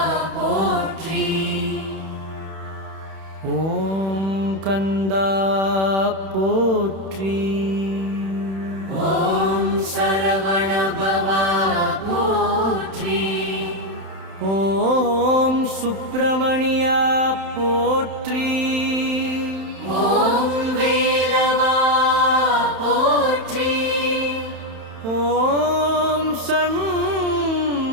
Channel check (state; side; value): late; left; 31 ms